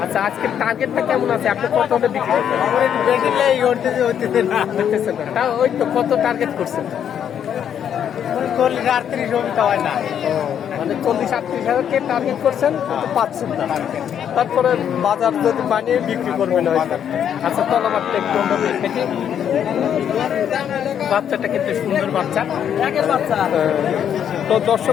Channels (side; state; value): right; quieter; 9.0 dB